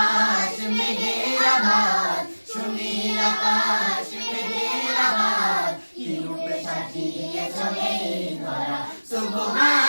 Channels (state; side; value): inverted; both; correlation -1.00